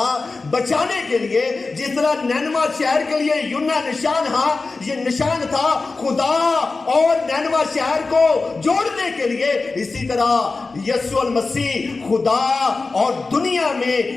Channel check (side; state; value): right; quieter; 3.8 dB